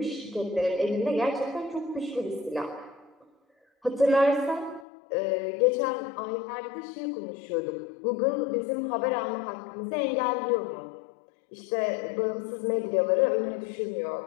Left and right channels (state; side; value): drops out; right; at 4.9 s